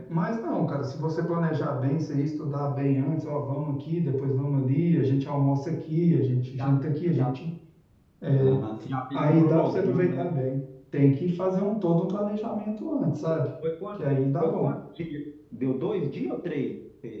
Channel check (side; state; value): both; identical; correlation 1.00